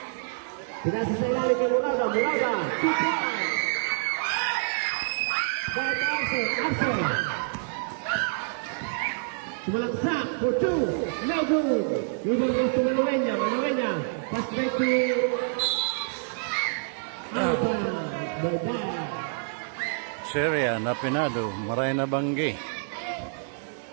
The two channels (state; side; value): silent; left; digital silence